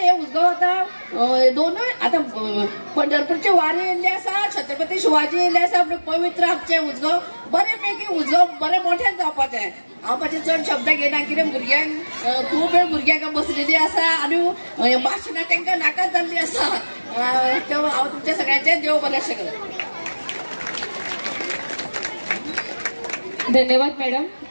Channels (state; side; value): inverted; both; correlation -1.00